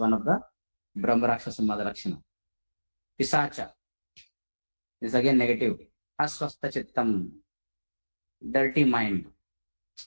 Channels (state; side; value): inverted; both; correlation -1.00